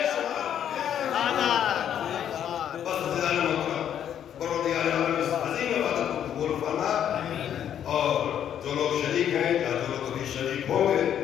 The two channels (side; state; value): right; quieter; 9.7 dB